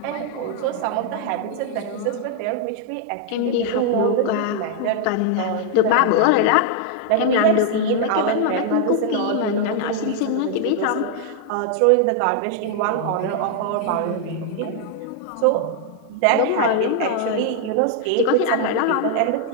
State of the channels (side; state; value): both; different; correlation 0.00